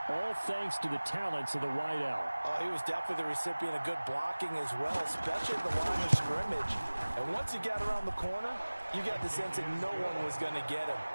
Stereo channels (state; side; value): inverted; both; correlation -1.00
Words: all thanks to the talents of the wideout. Oh, he was definitely the recipient of good blocking as well, especially at the line of scrimmage. And once he got around the corner, you got the sense that no one was going to get him.